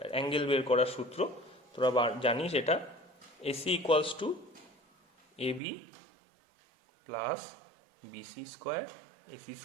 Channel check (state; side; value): drops out; left; at 5.6 s